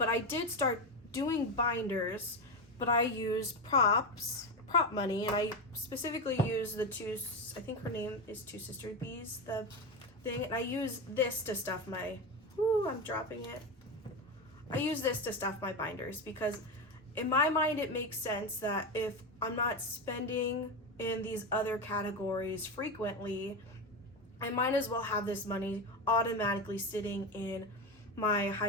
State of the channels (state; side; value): normal; both; correlation 0.16